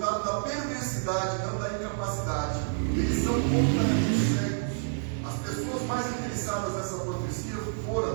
da perversidade, não da incapacidade. Eles são completamente cegos. As pessoas mais interessadas nessa profecia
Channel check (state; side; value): silent; left; digital silence